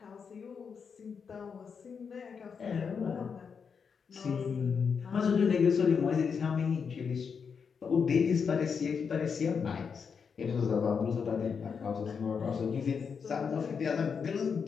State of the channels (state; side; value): quieter; right; 6.2 dB